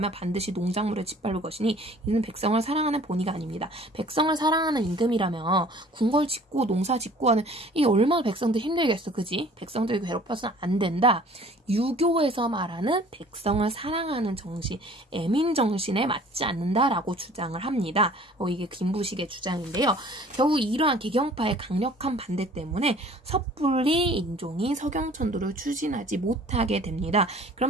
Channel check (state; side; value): normal; both; correlation 0.51